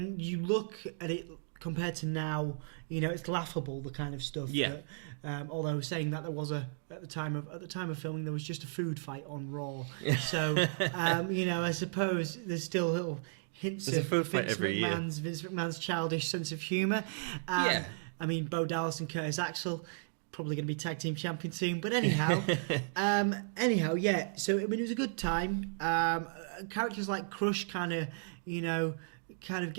you look at it compared to now, it's laughable, the kind of stuff. Yeah. That, although saying that there was at the time of filming, there was just a food fight on Raw. So I suppose there's still little hints of Vince McMahon's childish sense of humour. Bo Dallas and Curtis Axel probably going to be tag team champions soon. But anyhow, yeah. So it was a good time. Characters like Crush kind of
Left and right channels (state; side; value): silent; left; digital silence